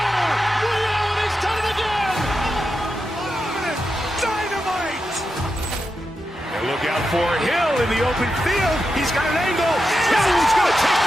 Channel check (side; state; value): both; normal; correlation 0.88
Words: Ray Allen has done it again. Dynamite. And look out for Hill in the open field. He's got an angle. Hill's going to